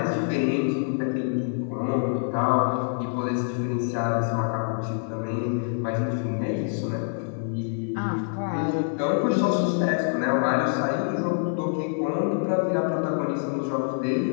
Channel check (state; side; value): silent; right; 56 dB below the other